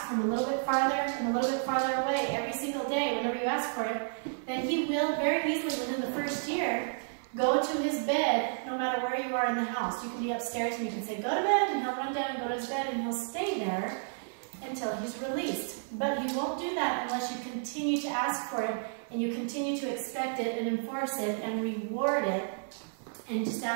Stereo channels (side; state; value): left; silent; 57 dB below the other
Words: from a little bit farther and a little bit farther away every single day whenever you ask for it, then he will very easily within the first year go to his bed no matter where you are in the house. You can be upstairs and you can say go to bed and he'll run down and go to his bed and he'll stay there until he's released. But he won't do that unless you continue to ask for it and you continue to expect it and enforce it and reward it and just